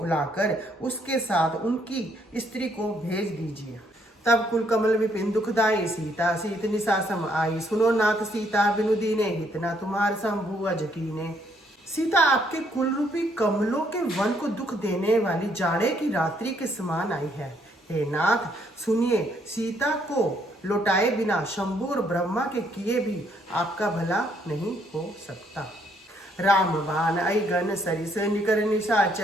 उसके साथ उनकी स्त्री को भेज दीजिए। तब कुल कमल विपिन दुखदाई, सीता सीत निशासम आई। सुनो नाथ सीता बिनु दीने, हितना तुम्हार शंभु अज कीने। सीता आपके कुल रूपी कमलों के वन को दुख देने वाली जाड़े की रात्रि के समान आई है। हे नाथ सुनिए, सीता को लौटाए बिना शंभु और ब्रह्मा के किए भी आपका भला नहीं हो सकता। राम बाण आई गन सरिस, निकर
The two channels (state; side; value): normal; both; correlation 0.70